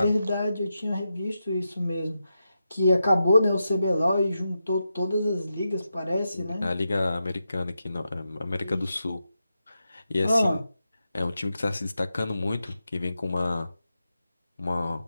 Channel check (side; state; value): both; inverted; correlation -0.88